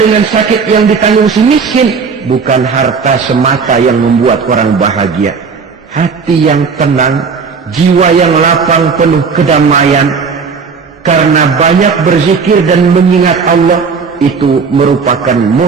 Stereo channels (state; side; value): quieter; left; 5.4 dB